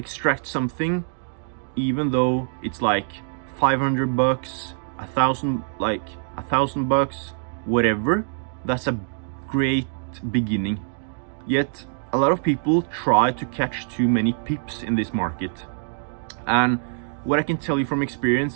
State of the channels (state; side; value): silent; left; digital silence